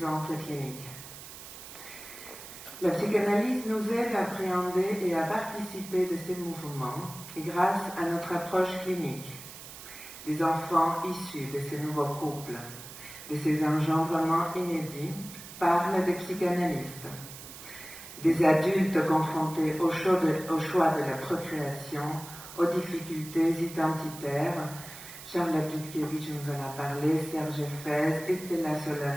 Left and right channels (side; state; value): right; noise; hiss, 14 dB below the sound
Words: cliniques. La psychanalyse nous aide à appréhender et à participer de ces mouvements grâce à notre approche clinique. Des enfants issus de ces nouveaux couples, de ces engendrements inédits, parlent des psychanalystes. Des adultes confrontés au choix de la procréation, aux difficultés identitaires. Charlotte Dudkiewicz nous en a parlé, Serge Fez, Estella